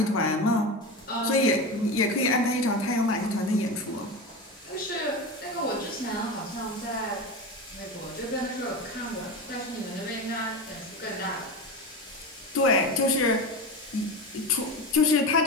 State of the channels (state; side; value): normal; both; correlation 0.23